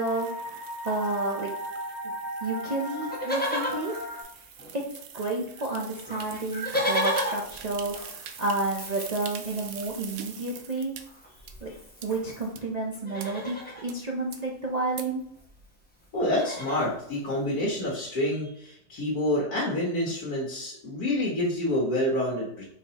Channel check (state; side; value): normal; both; correlation -0.07